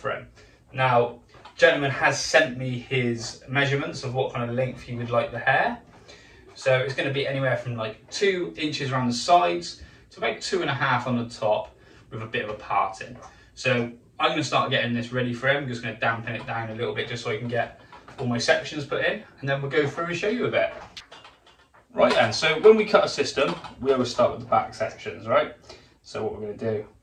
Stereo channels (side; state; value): both; identical; correlation 1.00